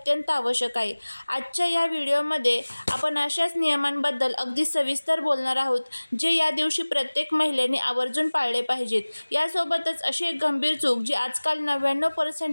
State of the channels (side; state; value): both; inverted; correlation -1.00